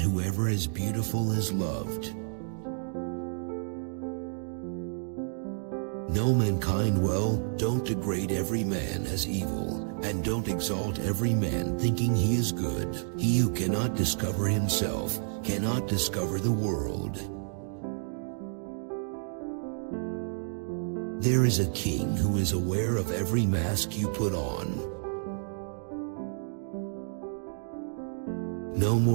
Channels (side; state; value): left; silent; digital silence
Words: is beautiful is loved. Know mankind well, don't degrade every man as evil, and don't exalt every man thinking he is good. He who cannot discover himself cannot discover the world. There is a king who is aware of every mask you put on. No